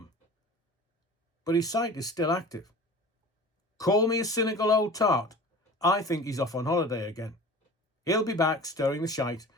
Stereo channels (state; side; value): normal; both; correlation 0.39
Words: But his site is still active. Call me a cynical old tart. I think he's off on holiday again. He'll be back stirring the shite